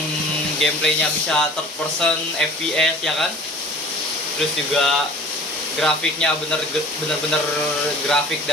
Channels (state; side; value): normal; both; correlation 0.45